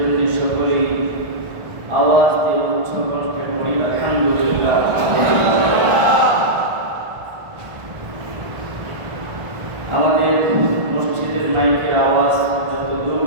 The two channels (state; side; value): late; left; 1.5 ms